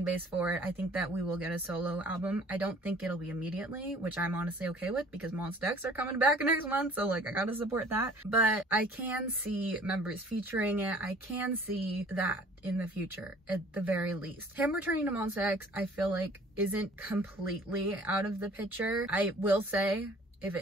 base for it. I think that we will get a solo album. I don't think it'll be immediately, which I'm honestly okay with because Monsta X are coming back next month, so like I gotta support that. But I can see members featuring it. I can see that in the future, at the very least. Him returning to Monsta X, I feel like isn't completely out of the picture. I will say, if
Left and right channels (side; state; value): both; normal; correlation 0.52